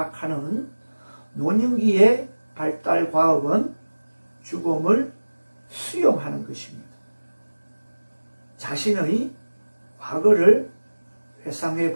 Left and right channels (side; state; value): both; inverted; correlation -1.00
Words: 노년기의 발달 과업은 죽음을 수용하는 것입니다. 자신의 과거를 회상해